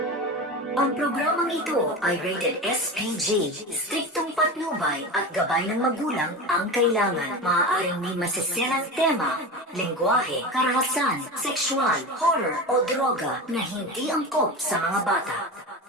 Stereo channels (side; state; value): both; normal; correlation 0.26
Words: Ang programang ito ay rated SPG. Striktong patnubay at gabay ng magulang ang kailangan. Maaaring may masiselang tema, lengguwahe, karahasan, sexual, horror o droga na hindi angkop sa mga bata.